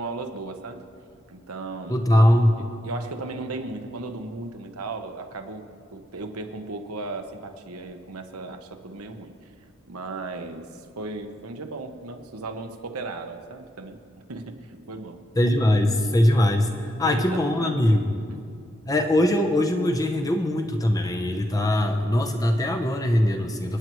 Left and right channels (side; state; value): both; normal; correlation 0.82